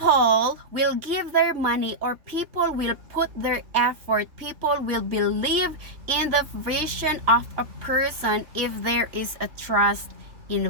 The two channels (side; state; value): left; late; 3.5 ms